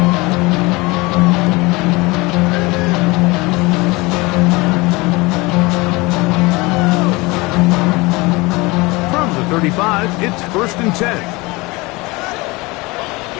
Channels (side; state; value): right; quieter; 23.8 dB